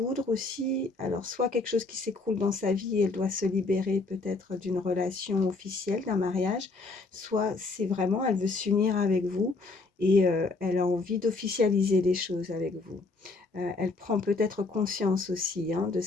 aussi. Alors, soit quelque chose qui s'écroule dans sa vie, elle doit se libérer peut-être d'une relation officielle, d'un mariage, soit c'est vraiment, elle veut s'unir avec vous et elle a envie d'officialiser les choses avec vous. Elle prend peut-être conscience aussi de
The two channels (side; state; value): right; quieter; 3.6 dB